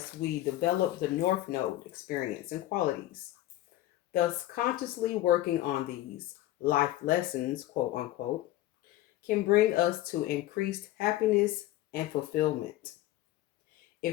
we develop the North Node experience and qualities. Thus, consciously working on these life lessons, quote unquote, can bring us to increased happiness and fulfillment.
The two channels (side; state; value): right; quieter; 15.0 dB